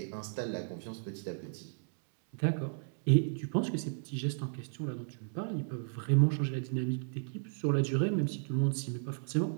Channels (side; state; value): left; silent; digital silence